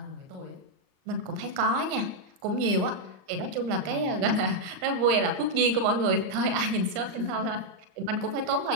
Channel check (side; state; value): left; late; 38 ms